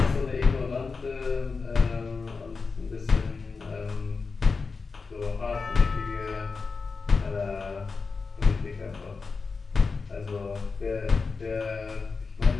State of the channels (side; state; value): right; quieter; 4.5 dB